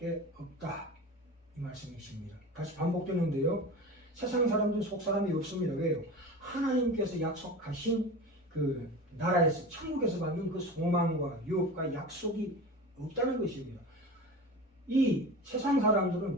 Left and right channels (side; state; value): both; normal; correlation 0.31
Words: 없다 이 말씀이십니다. 다시 반복되는데요. 세상 사람들은 속사람이 없습니다. 왜요? 하나님께서 약속하신 그 나라에서 천국에서 받는 그 소망과 유업과 약속이 없다는 것입니다. 이 세상 사람들은